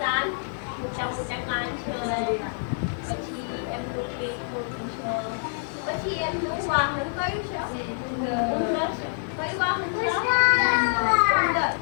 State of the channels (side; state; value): right; silent; digital silence